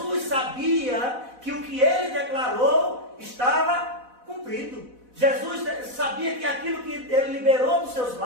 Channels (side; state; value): left; late; 4.0 ms